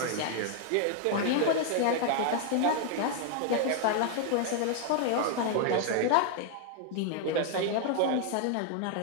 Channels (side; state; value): both; different; correlation 0.00